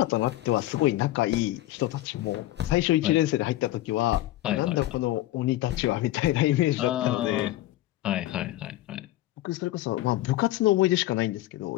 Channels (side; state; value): right; quieter; 15.9 dB